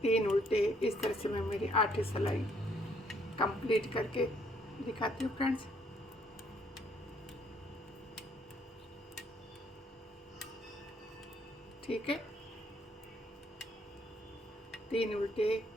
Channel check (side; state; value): both; normal; correlation 0.67